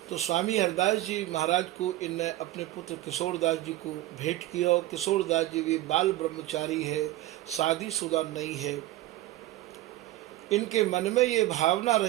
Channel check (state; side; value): quieter; left; 15.6 dB